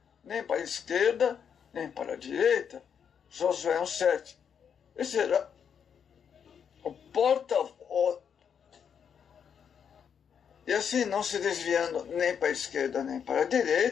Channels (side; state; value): right; quieter; 7.5 dB